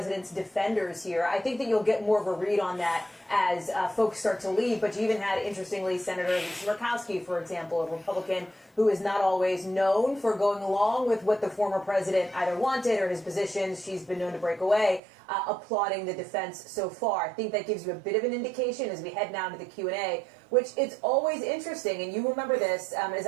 defenders here. I think that you'll get more of a read on that as folks start to leave, but you even had, interestingly, Senator Murkowski, for example, a Republican who is not always known for going along with what the former president either wanted or his positions. She's been known to break away, applauding the defense so far. I think that gives you a bit of an indication as we head now to the Q&A, which it's always interesting, and you remember this, as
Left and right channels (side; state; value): left; drops out; at 15.0 s